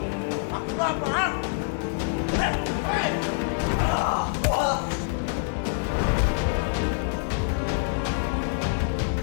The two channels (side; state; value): right; silent; 61 dB below the other